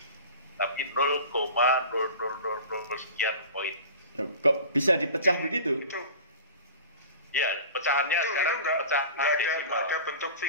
tapi 0,0000 sekian koin. Kok bisa dipecah begitu? Ya, pecahannya itu sekarang pecah nggak ada bentuk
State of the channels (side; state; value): both; inverted; correlation -0.38